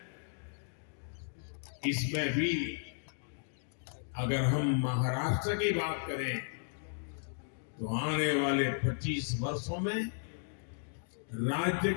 इसमें भी अगर हम महाराष्ट्र की बात करें तो आने वाले 25 वर्षों में राज्य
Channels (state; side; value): silent; right; digital silence